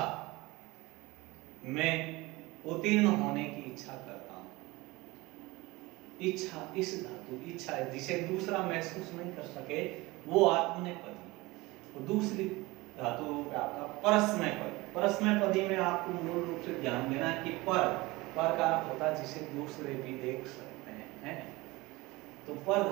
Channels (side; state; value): left; quieter; 21.7 dB